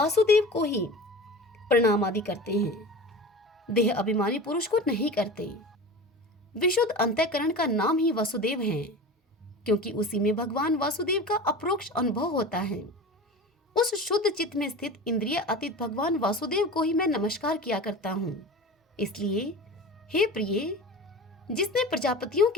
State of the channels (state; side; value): normal; both; correlation 0.33